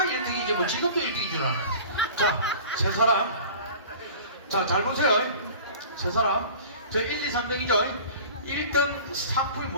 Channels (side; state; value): both; inverted; correlation -0.41